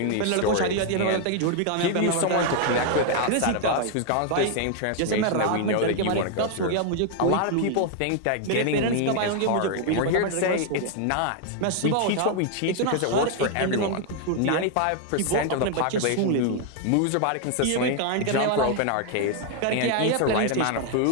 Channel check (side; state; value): both; different; correlation 0.00